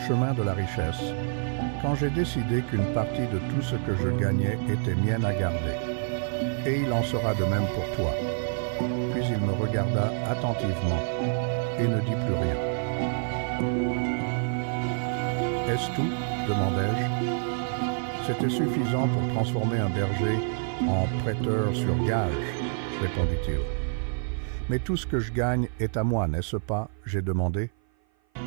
de la richesse quand j'ai décidé qu'une partie de tout ce que je gagnais était mienne à garder. Et il en sera de même pour toi. Puis il me regarda attentivement et ne dit plus rien. « Est-ce tout ?» demandai-je. C'était suffisant pour transformer un berger en prêteur sur gage, répondit-il. « Mais tout ce que je gagne est à moi, n'est-ce pas ?» j'ai demandé.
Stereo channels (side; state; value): left; silent; 55 dB below the other